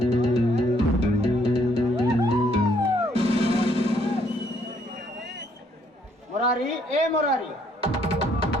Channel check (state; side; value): normal; both; correlation 0.67